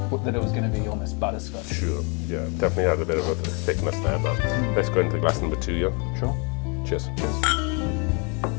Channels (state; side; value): quieter; right; 34.0 dB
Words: that it was going to be almost butterscotch. Sure, yeah, definitely had a bit of a thickness there, but let's go into glass number 2, yeah? Sure. Cheers.